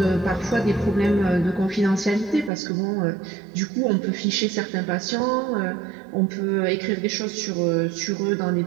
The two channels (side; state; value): left; drops out; at 2.5 s